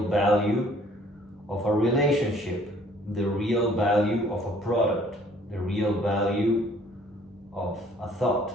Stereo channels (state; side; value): normal; both; correlation 0.58